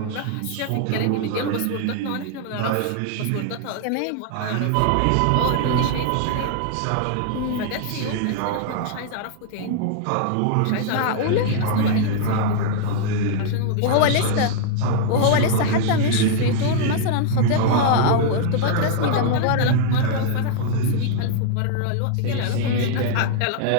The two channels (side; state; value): both; different; correlation -0.01